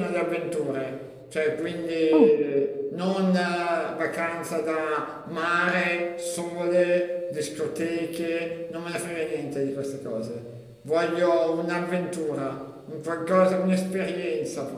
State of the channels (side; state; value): both; identical; correlation 1.00